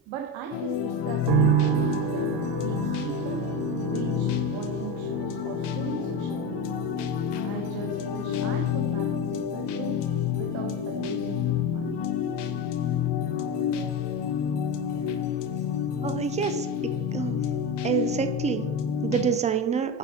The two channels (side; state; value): both; normal; correlation 0.20